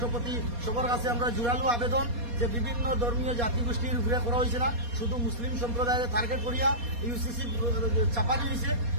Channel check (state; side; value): late; left; 4.2 ms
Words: সবার কাছে আমরা জোরালো আবেদন যে বিভিন্ন ধর্মীয় জাতিগোষ্ঠীর উপরে করা হয়েছে না, শুধু মুসলিম সম্প্রদায়ের টার্গেট করিয়া ইউসিসি চাপানি হয়েছে,